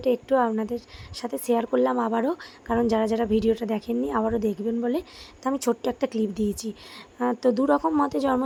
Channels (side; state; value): both; identical; correlation 1.00